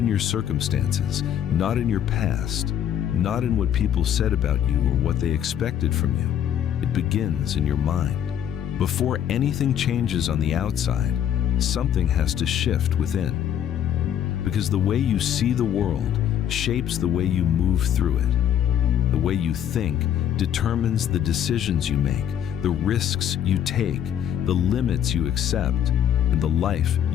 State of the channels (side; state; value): right; quieter; 9.9 dB